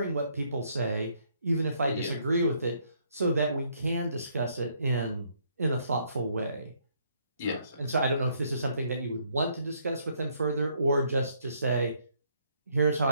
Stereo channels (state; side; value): inverted; both; correlation -0.69